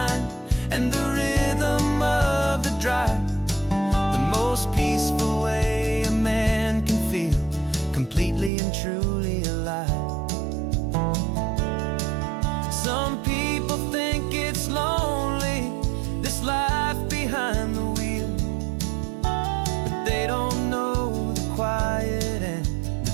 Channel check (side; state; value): left; drops out; at 8.5 s